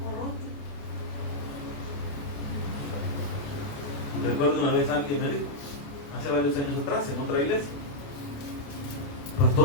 Recuerdo una vez alguien me dijo, hace varios años atrás, en otra iglesia:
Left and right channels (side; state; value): right; late; 28 ms